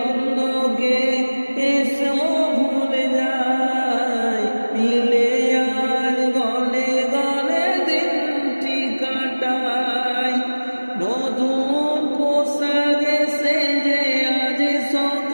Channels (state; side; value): inverted; both; correlation -1.00